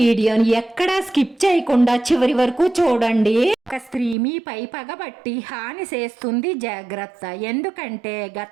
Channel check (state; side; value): drops out; left; at 4.2 s